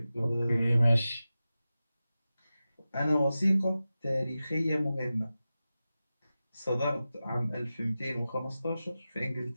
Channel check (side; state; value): both; inverted; correlation -0.94